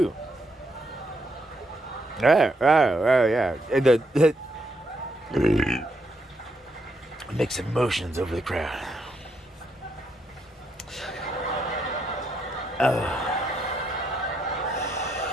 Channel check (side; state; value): both; normal; correlation 0.77